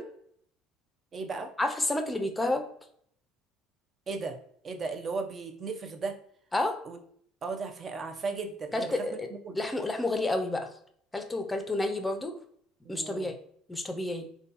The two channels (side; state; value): both; normal; correlation 0.79